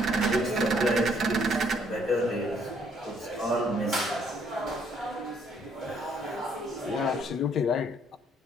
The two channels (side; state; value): both; normal; correlation 0.66